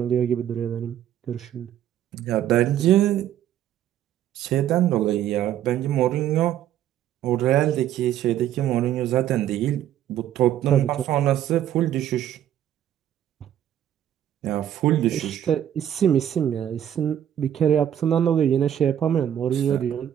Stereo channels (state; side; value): quieter; left; 10.9 dB